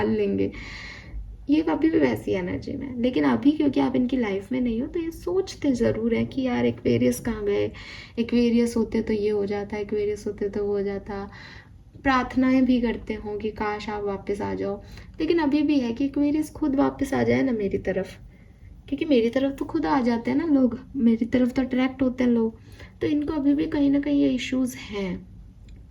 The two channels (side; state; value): both; identical; correlation 1.00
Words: लेंगे, ये अभी भी वैसी एनर्जी में है। लेकिन अभी क्योंकि आप इनकी लाइफ में नहीं हो तो ये सोचते ज़रूर है कि यार एक्वेरियस कहाँ गए, एक्वेरियस होते तो ये हो जाता, एक्वेरियस होते तो वो हो जाता। प्रार्थनाएं भी करते हों कि काश आप वापस आ जाओ। लेकिन अभी भी है कि एक्वेरियस खुद वापस आ जाए ना मेरी तरफ, क्योंकि मेरी तरफ तो खुद आ जाते हैं ना लोग, मेरी तरफ तो अट्रैक्ट होते हैं लोग। तो इनको अभी भी कहीं ना कहीं ये इश्यूज हैं,